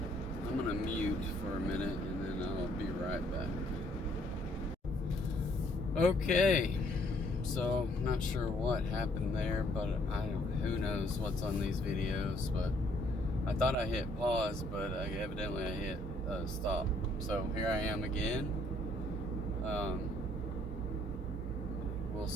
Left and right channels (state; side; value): normal; both; correlation 0.65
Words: I'm gonna mute for a minute and then I'll be right back. Okay, so not sure what happened there, but who knows what's on these videos, but I thought I hit pause, but evidently I hit stop. So here I am again. We'll